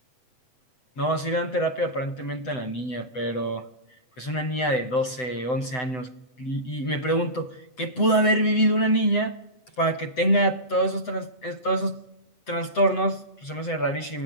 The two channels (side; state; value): right; late; 7.9 ms